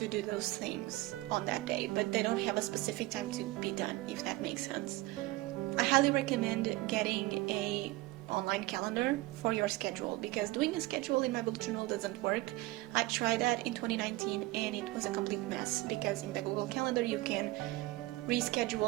do those things on that day, but they don't have a specific time to be done, if that makes sense. I highly recommend getting a online calendar for your schedule, because doing a schedule in my bullet journal doesn't work. I tried that in 2019 and it was a complete mess, because in the Google Calendar you can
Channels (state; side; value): quieter; left; 19.5 dB